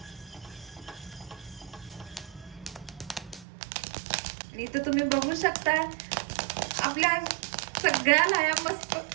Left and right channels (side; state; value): left; drops out; at 3.5 s